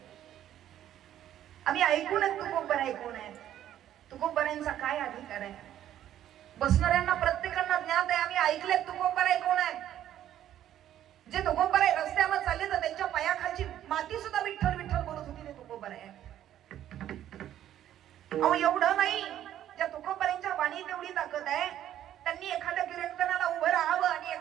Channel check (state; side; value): quieter; left; 11.6 dB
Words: आम्ही ऐकून तुकोबराई कोण आहे, तुकोबराईंचा काय अधिकार आहे. बसणाऱ्यांना प्रत्येकांना ज्ञात आहे, आम्ही ऐकले तुकोबराई कोण आहे. जे तुकोबराई रस्त्यावर चालले तर त्यांच्या पायाखालची माती सुद्धा विठ्ठल विठ्ठल बोलत होती, ते तुकोबराई. अहो एवढं नाही, ज्या तुकोबराईंच्या वाणीत एवढी ताकद आहे, त्यांनी एखाद्या कीर्तनाला उभं राहावं आणि